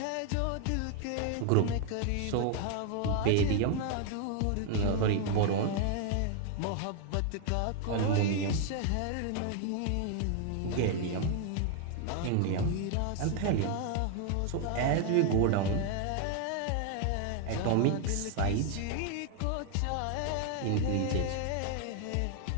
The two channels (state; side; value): different; both; correlation 0.00